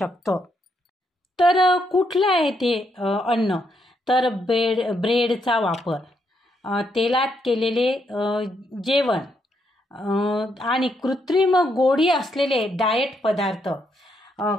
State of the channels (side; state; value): both; normal; correlation 0.77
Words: तर कुठलं आहे ते अन्न, तर ब्रेडचा वापर, तेलात केलेले जेवण आणि कृत्रिम गोडी असलेले डाएट पदार्थ.